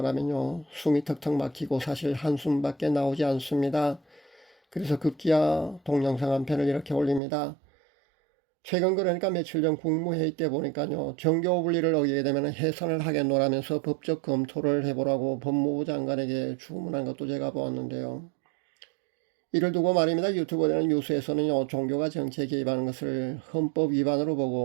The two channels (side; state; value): left; drops out; at 7.2 s